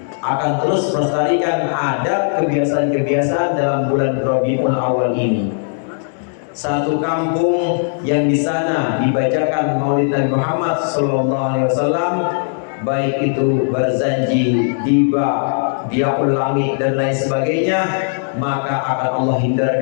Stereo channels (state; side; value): silent; right; 67 dB below the other